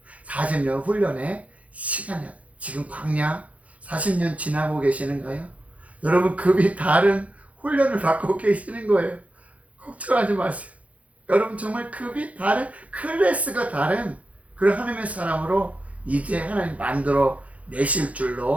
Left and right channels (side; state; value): left; late; 0.067 ms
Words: 40년 훈련의 시간이야. 지금 광야 40년 지나고 계시는가요? 여러분, 급이 다른 훈련을 받고 계시는 거예요. 걱정하지 마세요. 여러분, 정말 급이 다른, 클래스가 다른 그런 하나님의 사람으로 이제 하나님 만들어 내실